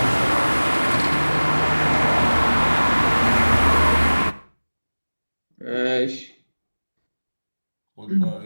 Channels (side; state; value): both; inverted; correlation -1.00